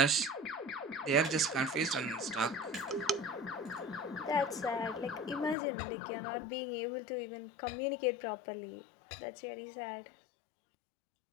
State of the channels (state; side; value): drops out; right; at 5.6 s